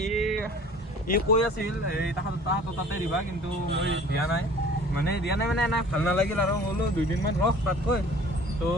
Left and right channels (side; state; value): both; normal; correlation 0.48